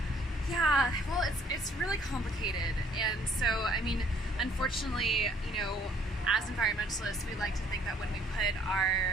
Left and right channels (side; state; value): both; normal; correlation 0.61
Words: Yeah, well, it's really complicated, and so I mean, unfortunately, you know, as environmentalists, we like to think that when we put